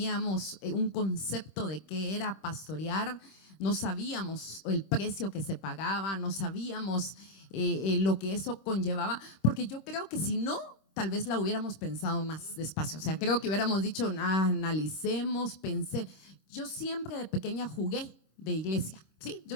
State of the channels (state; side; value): late; right; 26 ms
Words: un concepto de qué era pastorear, no sabíamos el precio que se pagaba, no sabíamos lo que eso conllevaba, porque yo creo que si no, tal vez la hubiéramos pensado más despacio. O sea, creo que hubiéramos dicho, analicemos, pensé. Yo siempre de pequeña jugué de iglesia, sí,